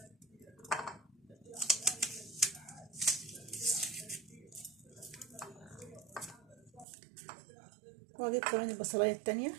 واجيب كمان البصلايه التانية،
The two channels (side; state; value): left; drops out; at 6.9 s